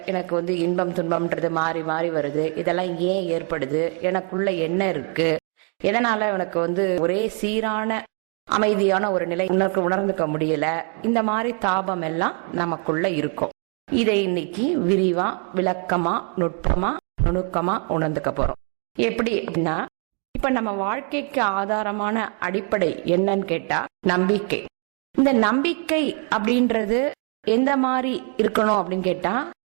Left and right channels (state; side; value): quieter; left; 39.9 dB